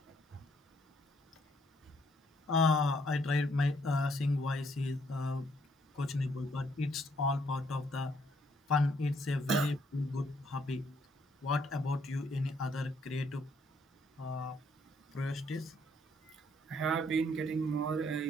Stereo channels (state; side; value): normal; both; correlation 0.69